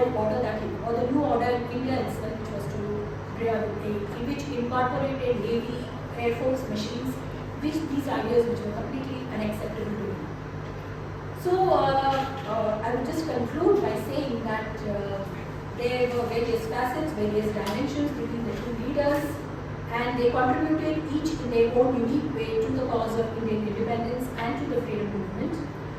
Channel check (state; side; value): identical; both; correlation 1.00